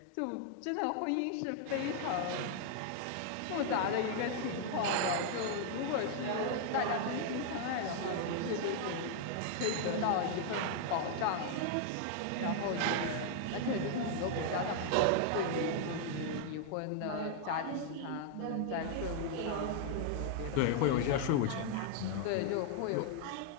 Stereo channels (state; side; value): different; both; correlation 0.00